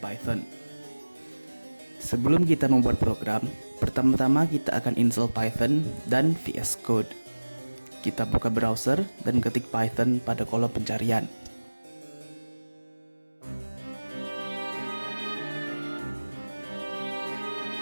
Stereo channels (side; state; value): both; inverted; correlation -1.00